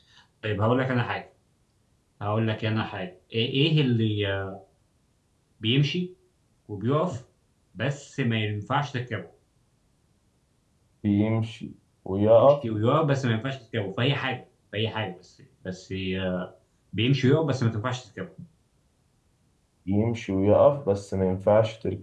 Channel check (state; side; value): identical; both; correlation 1.00